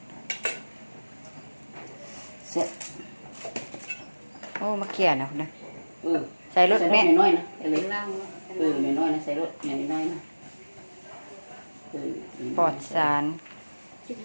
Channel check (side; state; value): both; inverted; correlation -1.00